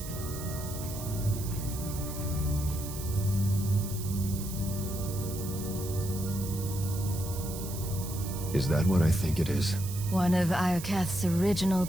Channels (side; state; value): right; noise; hiss, 11 dB below the sound